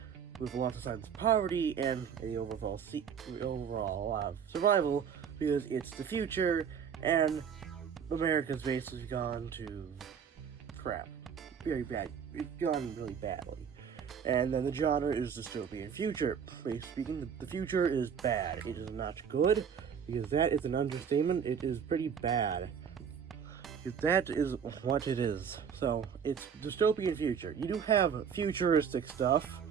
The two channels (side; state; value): left; quieter; 7.4 dB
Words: with lots of signs of poverty and the overall survival, because it's the future and America's basically gone to crap. Very bad. It's gone really badly. And then the genre is dystopian future. Basically speaking, the future is bad. It is not good, because that is an understatement. It is pretty bad. That is what it is. So, it's dystopian future. You do have futuristic stuff,